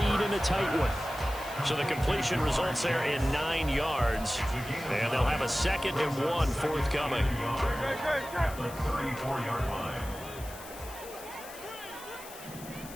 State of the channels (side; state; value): left; noise; hiss, 16 dB below the sound